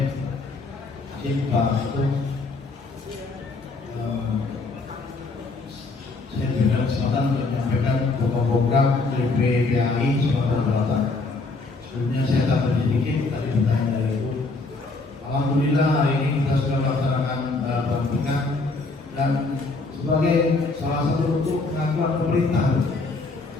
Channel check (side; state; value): right; quieter; 3.5 dB